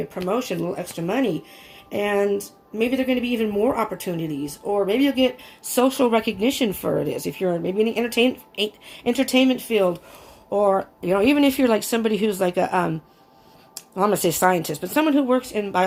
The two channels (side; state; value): both; identical; correlation 1.00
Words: promotion, a little extra money, and maybe there are going to be even more opportunities, or maybe you'll get social recognition for it. If you're maybe in the entertainment field, or even if you're like somebody who's like a I'm going to say scientist, but someone who works in